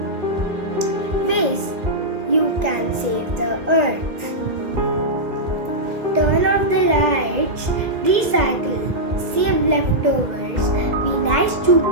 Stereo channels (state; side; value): late; left; 2.1 ms